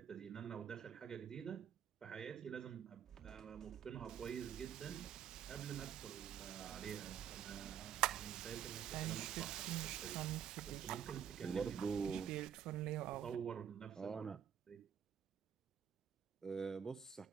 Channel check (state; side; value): quieter; left; 8.9 dB